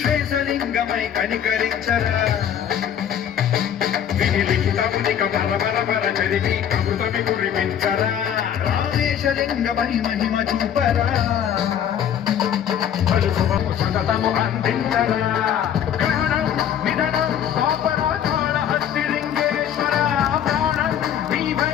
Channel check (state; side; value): quieter; right; 9.4 dB